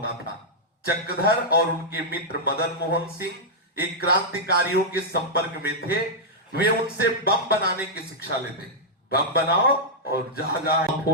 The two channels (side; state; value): both; normal; correlation -0.06